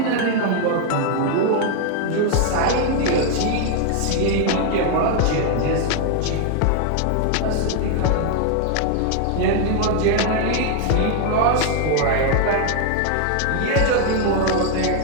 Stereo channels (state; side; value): different; both; correlation 0.00